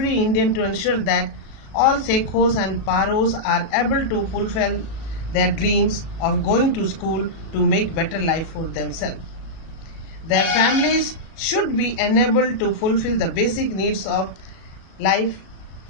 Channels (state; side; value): late; right; 37 ms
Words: Indian to ensure that all Sekhos and Paros are able to fulfill their dreams of going to school to make better life for themselves. Their families should be enabled to fulfill the basic needs of life,